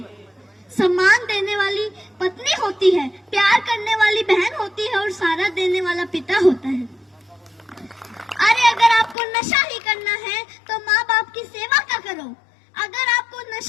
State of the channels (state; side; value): drops out; right; at 9.2 s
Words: सम्मान देने वाली पत्नी होती है, प्यार करने वाली बहन होती है और सहारा देने वाला पिता होता है। अरे अगर आपको नशा ही करना है तो माँ बाप की सेवा का करो। अगर आपको